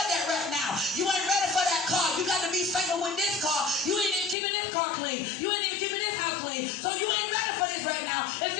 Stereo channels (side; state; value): right; drops out; at 4.4 s